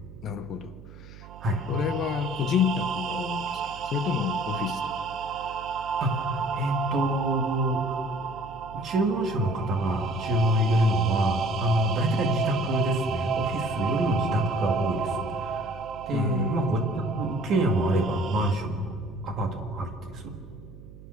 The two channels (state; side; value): noise; right; hum, 17 dB below the sound